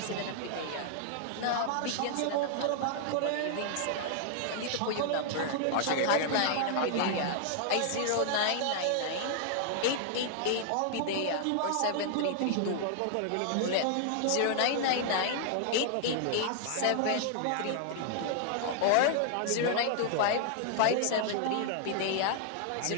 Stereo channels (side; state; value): both; different; correlation 0.00